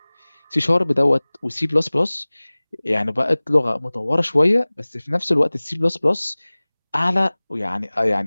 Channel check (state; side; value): inverted; both; correlation -1.00